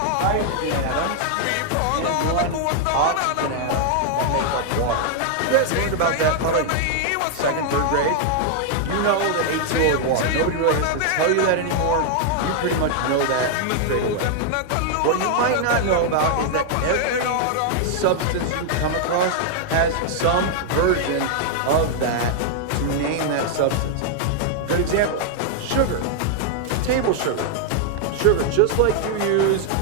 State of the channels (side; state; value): both; different; correlation 0.00